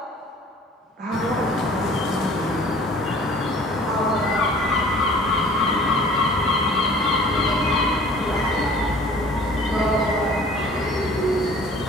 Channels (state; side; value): normal; both; correlation 0.49